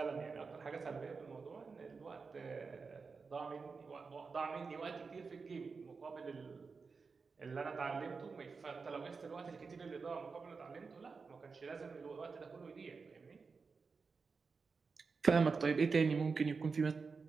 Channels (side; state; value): left; quieter; 4.8 dB